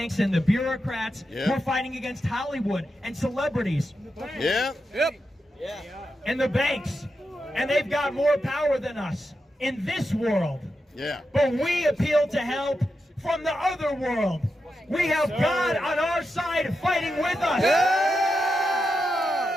and the bureaucrats. We're fighting against Hollywood and celebrities. And the banks. And they've got more power than us in this world. But we appeal to help from the other world. We have God on our side fighting with us.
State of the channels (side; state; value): both; normal; correlation 0.88